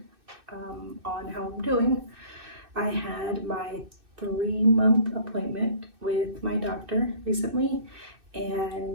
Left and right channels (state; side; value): late; left; 2.6 ms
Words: on how I'm doing. I had my 3-month appointment with my doctor recently,